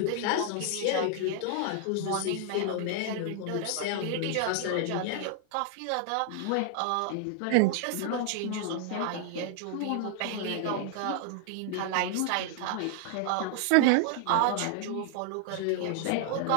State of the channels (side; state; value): both; different; correlation 0.00